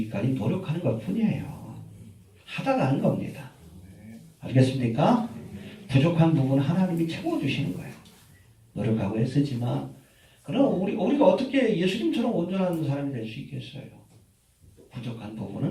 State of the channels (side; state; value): both; identical; correlation 1.00